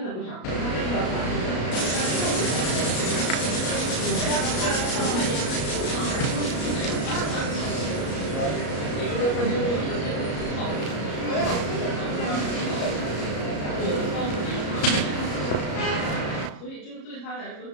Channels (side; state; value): right; late; 33 ms